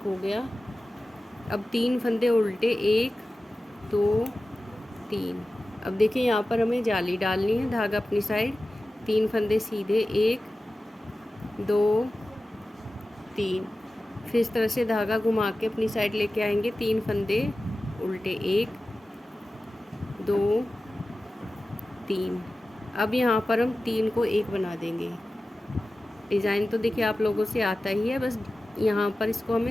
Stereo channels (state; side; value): normal; both; correlation 0.95